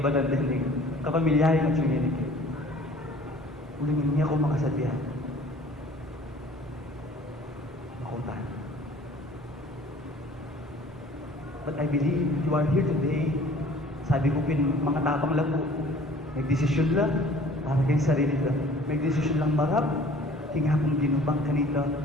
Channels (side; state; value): both; normal; correlation 0.50